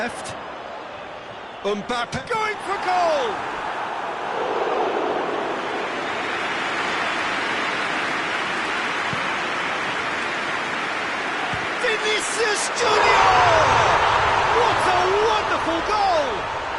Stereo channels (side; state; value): both; identical; correlation 1.00